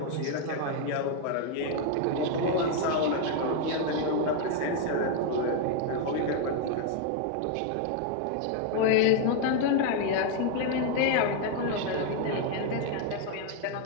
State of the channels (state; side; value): different; both; correlation 0.01